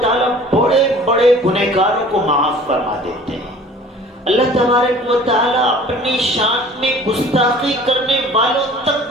بڑے بڑے گنہگاروں کو معاف فرما دیتے ہیں۔ اللہ تبارک و تعالیٰ اپنی شان میں گستاخی کرنے والوں تک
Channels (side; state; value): both; normal; correlation 0.47